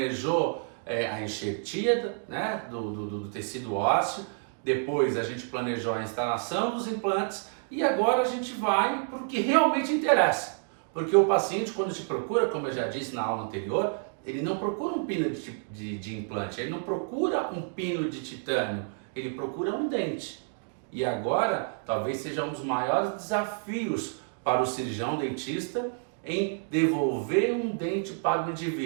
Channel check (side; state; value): left; silent; 58 dB below the other